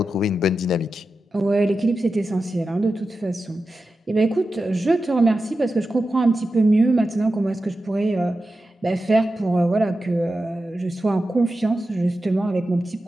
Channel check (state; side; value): normal; both; correlation 0.92